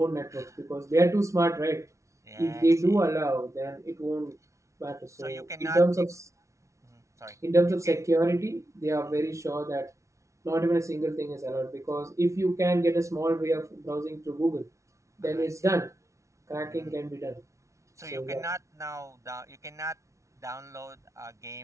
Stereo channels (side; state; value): left; late; 0.14 ms